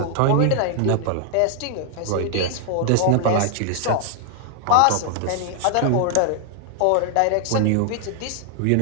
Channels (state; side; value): different; both; correlation 0.00